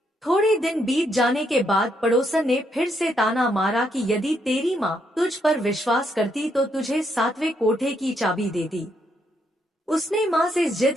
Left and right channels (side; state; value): both; normal; correlation 0.76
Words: थोड़े दिन बीत जाने के बाद पड़ोसन ने फिर से ताना मारा कि यदि तेरी माँ तुझ पर विश्वास करती तो तुझे 7वें कोठे की चाबी देती। उसने माँ से